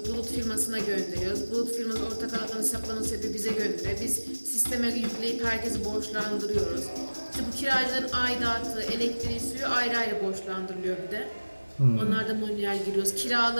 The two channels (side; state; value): both; inverted; correlation -1.00